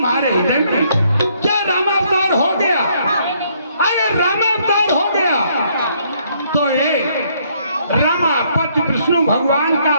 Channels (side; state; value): both; inverted; correlation -0.68